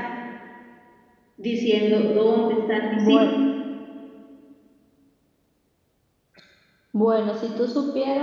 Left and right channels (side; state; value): both; identical; correlation 1.00